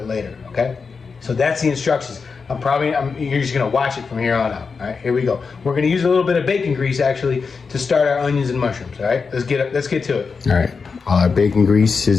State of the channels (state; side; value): quieter; right; 5.1 dB